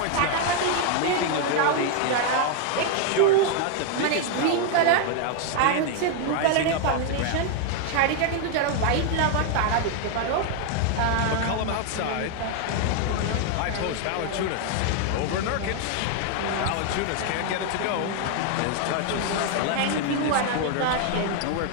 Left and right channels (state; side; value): different; both; correlation 0.00